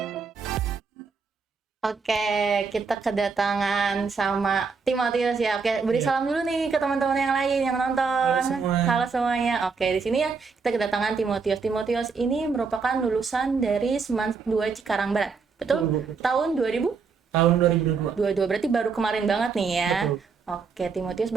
Oke, kita kedatangan sama Timotius ya. Oke, beri salam dulu nih ke teman-teman yang lain yang nonton. Halo semua. Halo semuanya. Oke, di sini ya kita kedatangan Timotius. Timotius ini merupakan lulusan dari Seman 2 Cikarang Barat. Betul? Tahun 2000? Tahun 2022. 22, berarti baru kemarin banget nih ya. Betul. Oke, Timotius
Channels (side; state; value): left; quieter; 5.1 dB